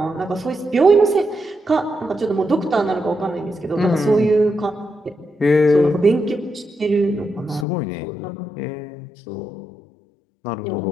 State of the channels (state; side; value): drops out; right; at 7.7 s